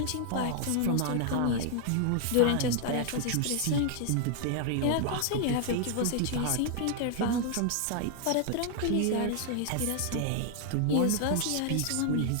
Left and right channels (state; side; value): different; both; correlation 0.00